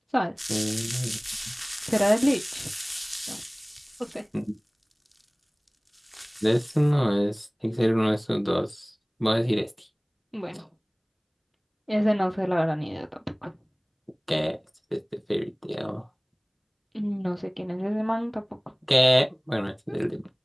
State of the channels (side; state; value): both; identical; correlation 1.00